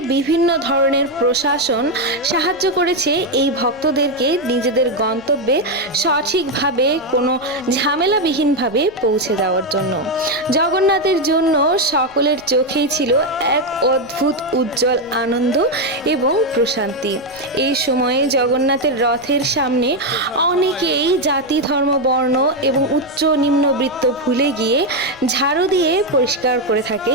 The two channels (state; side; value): noise; left; rumble, 26 dB below the sound